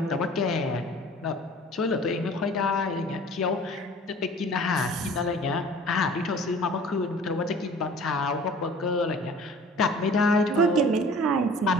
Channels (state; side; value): normal; both; correlation 0.47